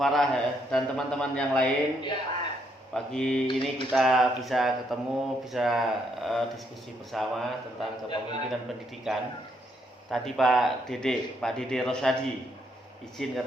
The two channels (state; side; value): normal; both; correlation 0.74